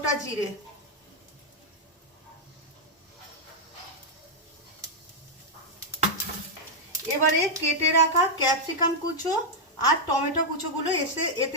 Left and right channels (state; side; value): normal; both; correlation -0.03